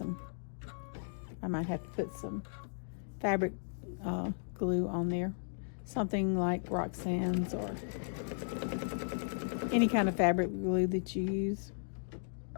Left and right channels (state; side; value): silent; right; digital silence